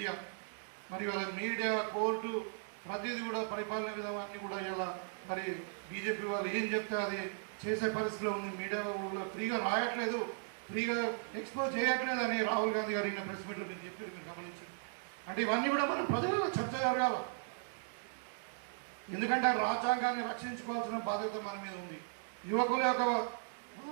మరి వాళ్ళ మీడియా, కోర్టు ప్రతిదీ కూడా పరిపాలన విధానాన్ని కూడా ఇలా మరి బీజేపీ వాళ్ళు ఏం చెప్తే అది చేసే పరిస్థితిలో ఉంది. మీడియా వాళ్ళు ఫ్రీగా రాయట్లేదు, ఫ్రీగా ఎక్స్పోజ్ చేయట్లేదు అని రాహుల్ గాంధీ గారు ప్రెస్ మీట్లో మీరు చెప్పారు, మీరు గమనించండి. అంటే ఇవన్నీ కూడా మనం ప్రజలలో చర్చ జరగాలి. ఎందుకంటే రాజ్యాంగాన్ని రక్షించుకోవాల్సిన బాధ్యత మన మీద ఉంది. యువకుల యొక్క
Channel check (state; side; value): silent; left; digital silence